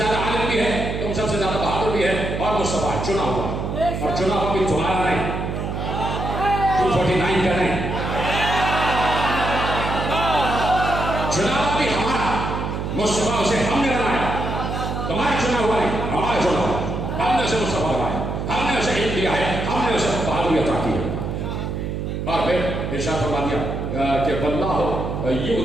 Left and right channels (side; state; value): right; noise; hum, 3 dB below the sound